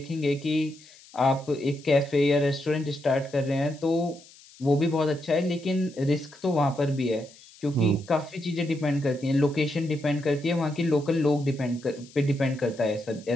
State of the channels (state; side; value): noise; left; hiss, 23 dB below the sound